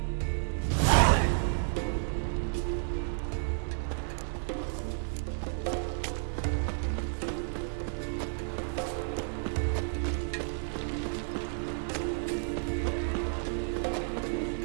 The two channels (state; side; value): silent; left; digital silence